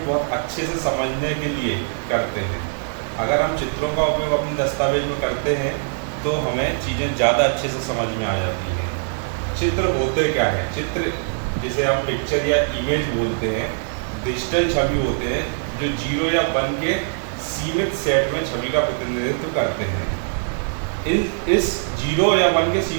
बहुत अच्छे से समझने के लिए करते हैं। अगर हम चित्रों का उपयोग अपने दस्तावेज में करते हैं तो हमें चीज़ें ज़्यादा अच्छे से समझ में आ जाती हैं। चित्र होते क्या है? चित्र जिसे हम पिक्चर या इमेज बोलते हैं, डिजिटल छवि होते हैं जो 0 या 1 के सीमित सेट में छवि का प्रतिनिधित्व करते हैं। इस 0 या 1 के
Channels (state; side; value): silent; left; 61 dB below the other